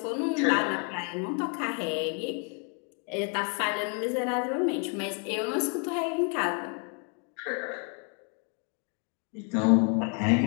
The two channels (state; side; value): quieter; right; 39.3 dB